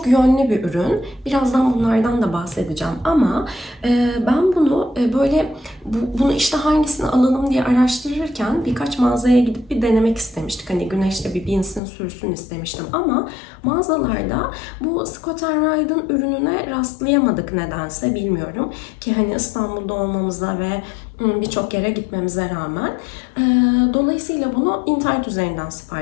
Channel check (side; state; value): right; drops out; at 11.8 s